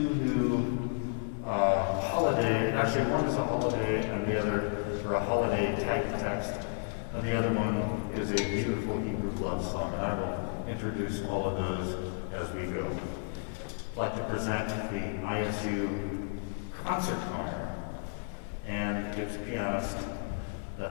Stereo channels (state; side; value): silent; right; digital silence